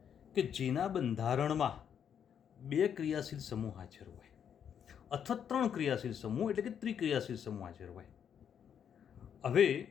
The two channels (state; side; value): quieter; right; 8.3 dB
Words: કે જેના બંધારણમાં 2 ક્રિયાશીલ સમૂહ હાજર હોય અથવા 3 ક્રિયાશીલ સમૂહ એટલે કે ત્રિક્રિયાશીલ સમૂહ હાજર હોય. હવે